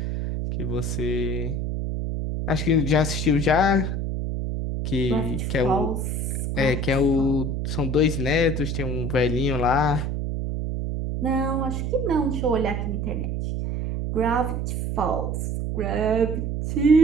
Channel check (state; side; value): noise; right; hum, 1 dB below the sound